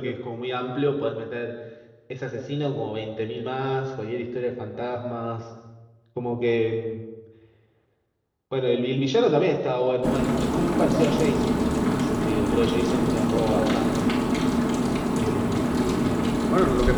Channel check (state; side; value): identical; both; correlation 1.00